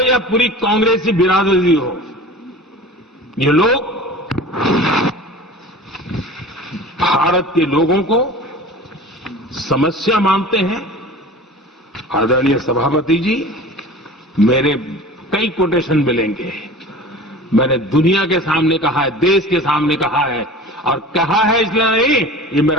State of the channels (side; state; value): both; normal; correlation 0.38